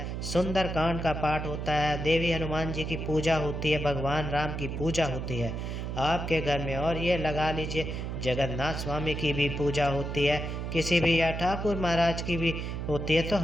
सुंदर कांड का पाठ होता है, देवी हनुमान जी की पूजा होती है, भगवान राम की पूजा होती है आपके घर में, और ये लगा लीजिए जगन्नाथ स्वामी की भी पूजा होती है, किसी भी या ठाकुर महाराज की भी होती है, तो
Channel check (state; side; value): noise; right; hum, 4 dB below the sound